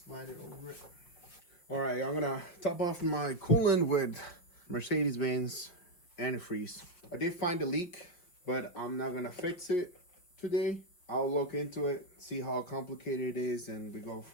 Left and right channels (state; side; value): late; right; 5.6 ms